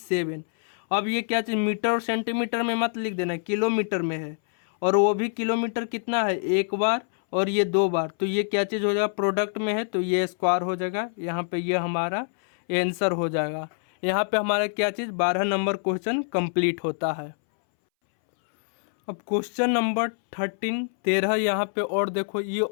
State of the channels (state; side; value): silent; right; 61 dB below the other